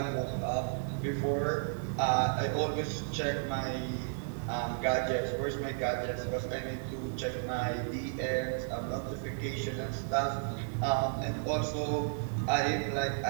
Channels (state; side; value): silent; left; digital silence